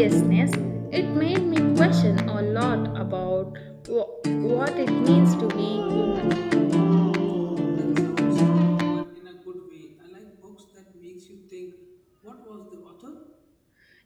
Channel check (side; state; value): both; identical; correlation 1.00